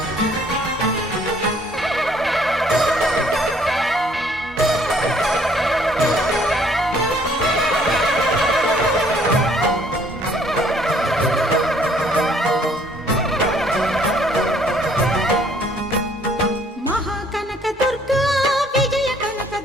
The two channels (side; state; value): both; normal; correlation 0.62